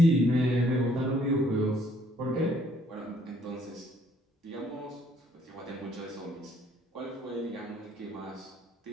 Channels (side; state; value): both; normal; correlation 0.64